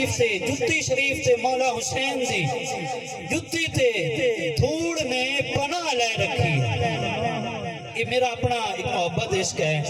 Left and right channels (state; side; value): identical; both; correlation 1.00